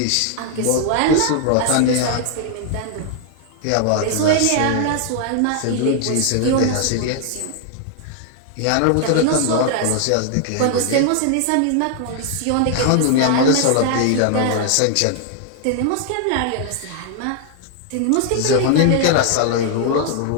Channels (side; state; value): both; different; correlation 0.00